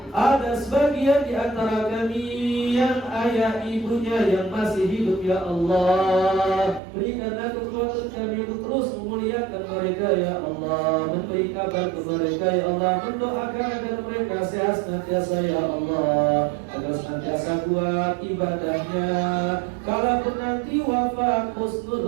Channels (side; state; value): left; drops out; at 6.8 s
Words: Ada sebagian di antara kami yang ayah ibunya yang masih hidup ya Allah, berikanlah kekuatan kami untuk terus memuliakan mereka ya Allah, memberi kabar kepada mereka ya Allah, mendoakan agar mereka sehat senantiasa ya Allah, agar senantiasa kuat ibadahnya, kalaupun nanti wafat